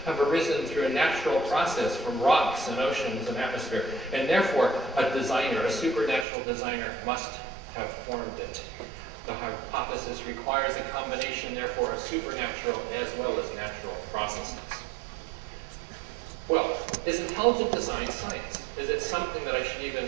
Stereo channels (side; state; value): left; drops out; at 6.2 s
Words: have arisen through a natural process from rocks and oceans and atmosphere? And therefore, a designer, a supernatural designer, must have formed it. The hypothesis requires a combination, therefore, of supernatural as well as natural processes. Well, is intelligent design science? Is it something that I should